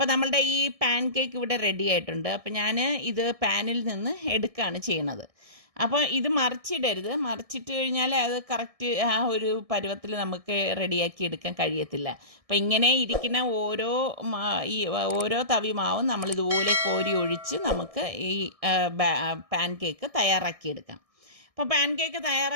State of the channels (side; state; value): left; late; 1.6 ms